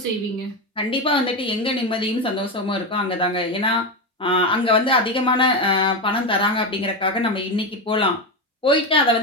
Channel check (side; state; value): both; normal; correlation 0.14